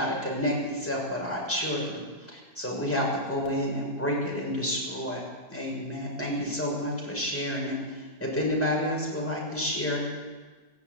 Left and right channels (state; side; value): normal; both; correlation -0.12